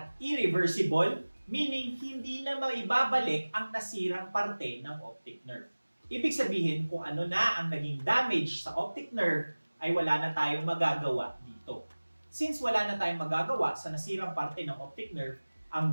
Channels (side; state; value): both; inverted; correlation -1.00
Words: irreversible, meaning hindi na maibabalik ang nasirang parte ng optic nerve. Ibig sabihin kung ano na ang naging damage sa optic nerve ay wala na tayong magagawa dito. Since wala na tayong magagawa sa nasirang parte ng optic nerve,